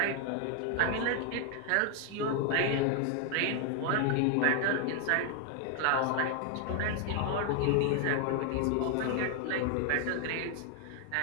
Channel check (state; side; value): different; both; correlation 0.00